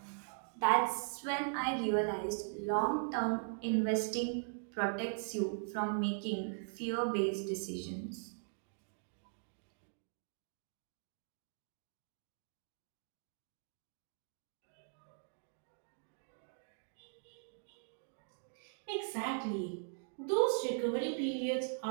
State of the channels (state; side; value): silent; left; digital silence